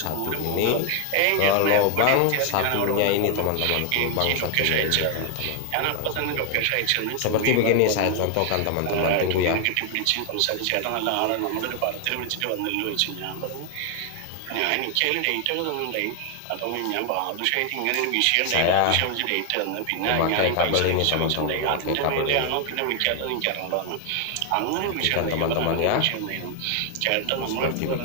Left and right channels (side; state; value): both; different; correlation 0.00